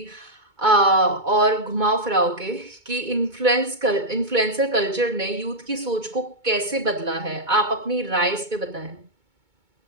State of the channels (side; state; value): left; late; 2.2 ms